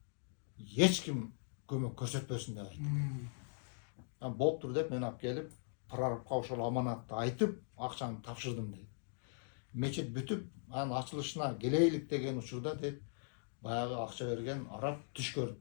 эч ким көмөк көрсөтпөсүн деп айтты. Болуптур деп мен алып келип, прорабка ошол аманатты айтып, акчаны тапшырдым дейт. Мечит бүтүп, анын ачылышына келейлик деген учурда дейт, баягы акча берген араб түш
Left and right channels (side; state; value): right; silent; digital silence